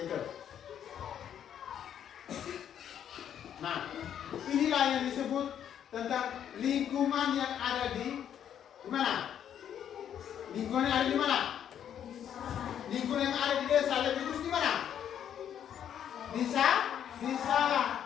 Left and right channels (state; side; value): quieter; right; 9.5 dB